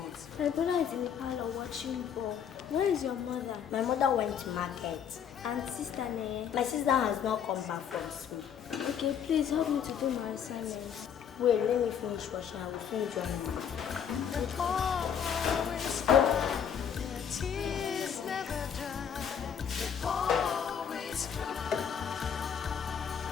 My brother is in the parlor watching ball. Where is your mother? My mother went to market. And sister Ne? My sister has not come back from school. Okay, please help me to do my assignments. Wait, let me finish washing. I will soon join you. Tears never dry. Always cry.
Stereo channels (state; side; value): quieter; right; 8.1 dB